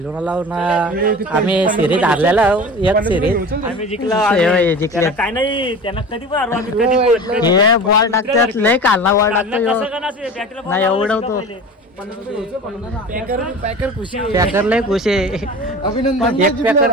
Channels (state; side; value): normal; both; correlation 0.35